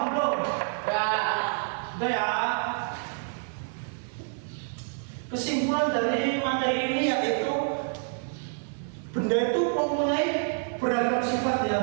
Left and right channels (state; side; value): silent; left; 59 dB below the other